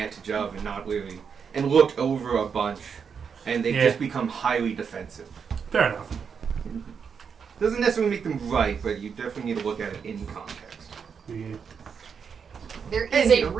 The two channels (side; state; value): left; quieter; 6.5 dB